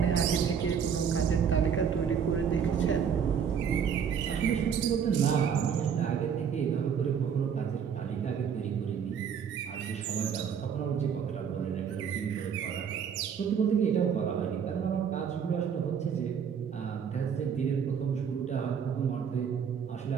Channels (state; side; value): quieter; left; 7.4 dB